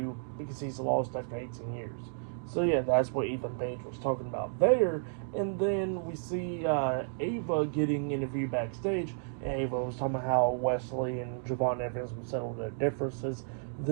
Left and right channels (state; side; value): silent; left; digital silence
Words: because he's lost after 18 years. So yeah, that's what Ethan Page was talking about there. And then we see Ava getting interviewed backstage. And Ava was talking about how Wesley and Javon Evans would settle their differences